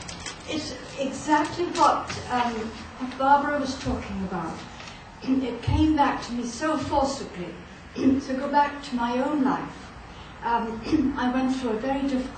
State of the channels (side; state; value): both; identical; correlation 1.00